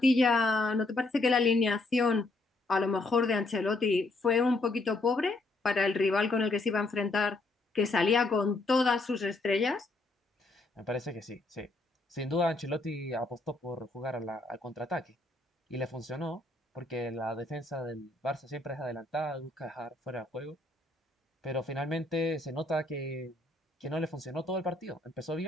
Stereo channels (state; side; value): quieter; right; 3.0 dB